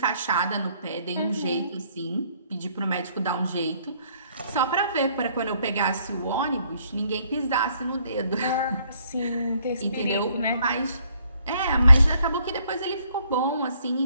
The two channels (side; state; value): both; inverted; correlation -0.66